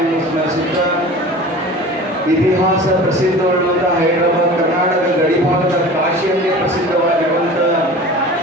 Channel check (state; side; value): normal; both; correlation 0.39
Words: ಸ್ಮರಿಸುತ್ತಾ ಇತಿಹಾಸ ಪ್ರಸಿದ್ಧವಾಗಿರುವಂಥ ಹೈದರಾಬಾದ್ ಕರ್ನಾಟಕ ಗಡಿಭಾಗದ ಕಾಶಿಯಲ್ಲೇ ಪ್ರಸಿದ್ಧವಾಗಿರುವಂಥ